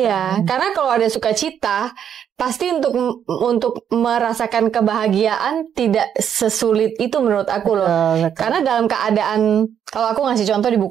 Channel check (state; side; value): quieter; left; 8.8 dB